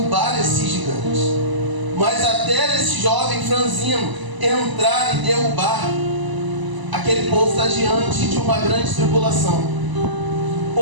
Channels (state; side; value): late; left; 1.0 ms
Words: esses gigantes. Mas até esse jovem franzino entrar e derrubar, aquele povo está diante de uma grande tribulação.